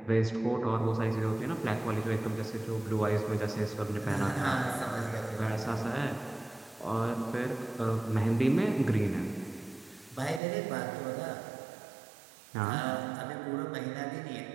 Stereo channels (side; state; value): left; drops out; at 10.4 s